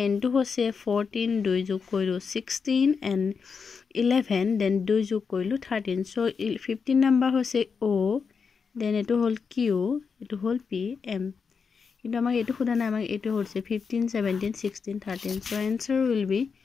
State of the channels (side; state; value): right; quieter; 5.6 dB